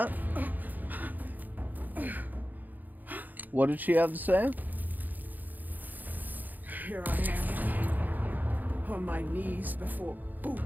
What did she have to say? Here I am, on my knees before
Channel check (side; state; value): left; late; 0.084 ms